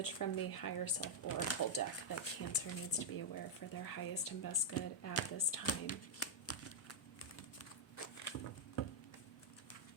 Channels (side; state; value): both; normal; correlation -0.03